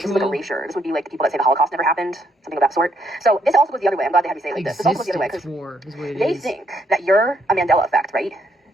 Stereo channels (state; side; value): normal; both; correlation 0.73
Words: is like erasure. This would be like the people that say the Holocaust never happened, something of that sort. So this also goes the other way. I'm glad they had me say it like this. This also goes the other way, because they think that you're a Mandela effect, right?